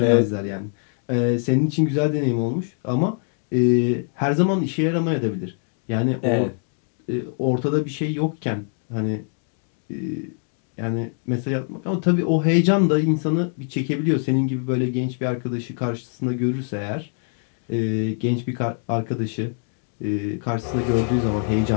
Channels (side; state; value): right; silent; 56 dB below the other